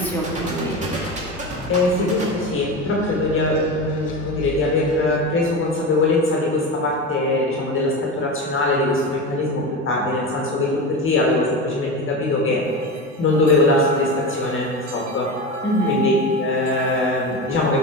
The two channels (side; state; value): both; normal; correlation 0.24